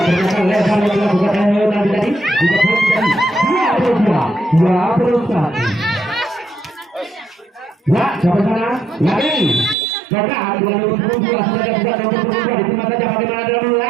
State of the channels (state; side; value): drops out; left; at 9.8 s